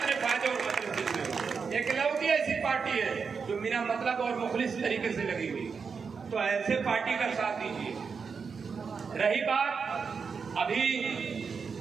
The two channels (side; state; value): left; quieter; 5.6 dB